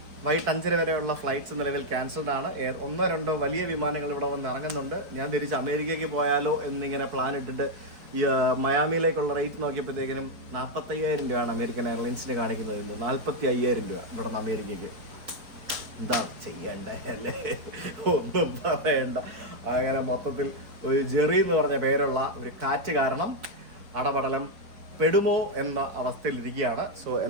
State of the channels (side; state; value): left; late; 4.6 ms